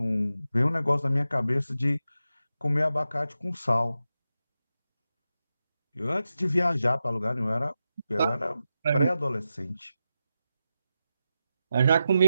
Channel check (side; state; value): both; inverted; correlation -0.90